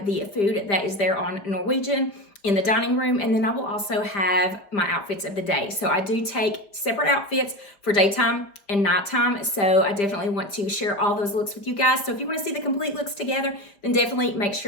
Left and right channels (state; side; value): late; right; 5.0 ms